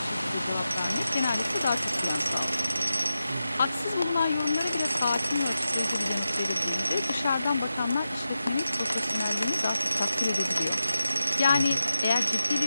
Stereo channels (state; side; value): inverted; both; correlation -0.91